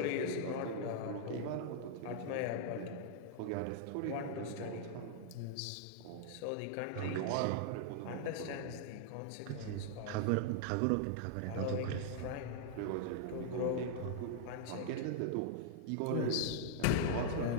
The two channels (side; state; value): both; different; correlation -0.01